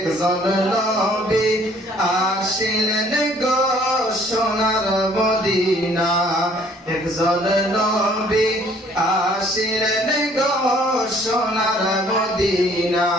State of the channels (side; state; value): both; normal; correlation 0.59